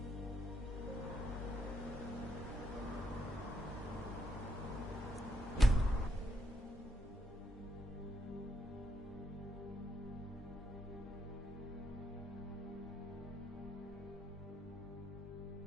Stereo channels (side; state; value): both; normal; correlation 0.78